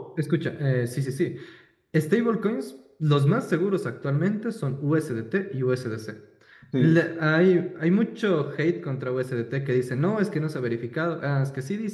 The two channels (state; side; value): identical; both; correlation 1.00